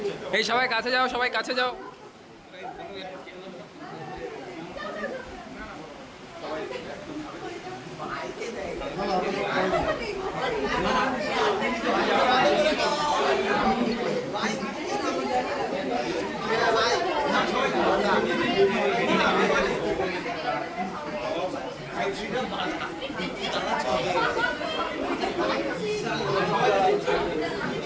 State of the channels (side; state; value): both; identical; correlation 1.00